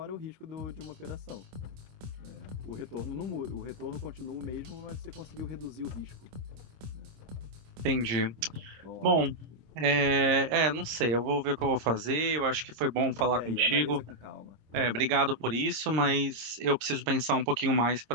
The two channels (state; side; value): late; left; 26 ms